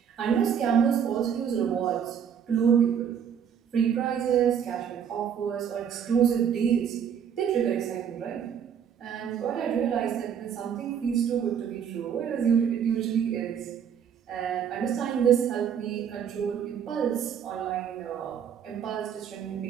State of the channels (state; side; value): quieter; left; 8.1 dB